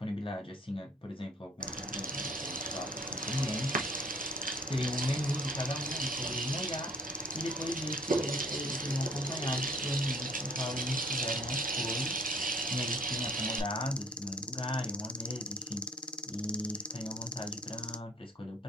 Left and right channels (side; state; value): both; normal; correlation 0.54